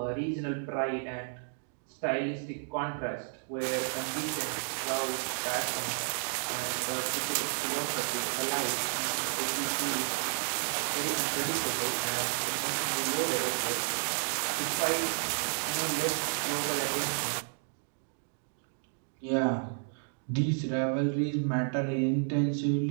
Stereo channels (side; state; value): left; silent; digital silence